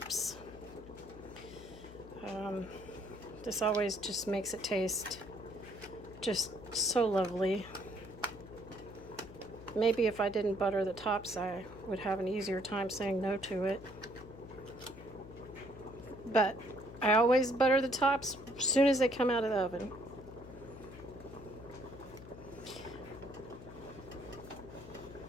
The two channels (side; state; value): left; noise; hum, 15 dB below the sound